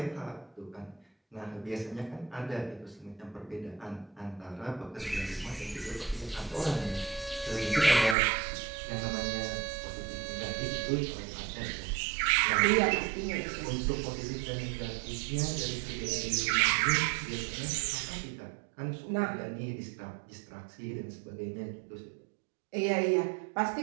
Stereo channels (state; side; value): drops out; left; at 8.2 s